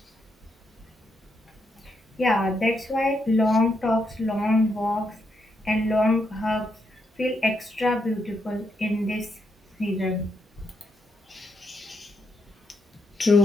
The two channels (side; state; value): both; normal; correlation 0.80